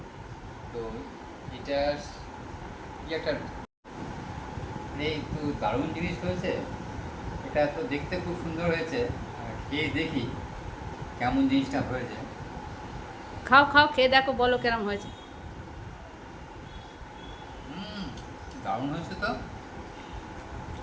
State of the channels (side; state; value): both; identical; correlation 1.00